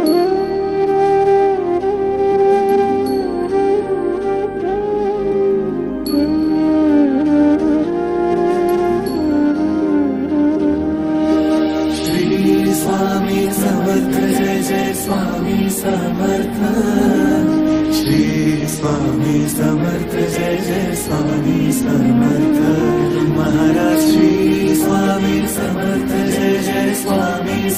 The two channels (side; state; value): both; identical; correlation 1.00